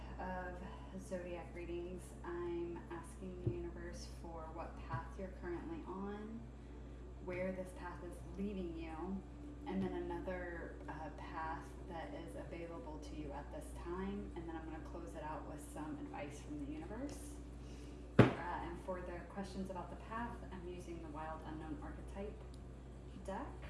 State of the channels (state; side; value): identical; both; correlation 1.00